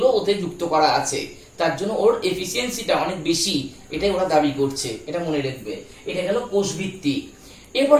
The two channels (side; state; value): both; identical; correlation 1.00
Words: ওতে যুক্ত করা আছে, তার জন্য ওর এফিসিয়েন্সিটা অনেক বেশি, এটাই ওরা দাবি করছে। এটা মনে রাখবে। এটা গেল কোষভিত্তিক।